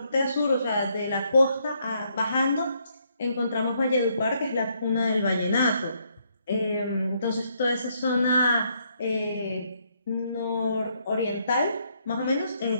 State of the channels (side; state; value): both; inverted; correlation -0.73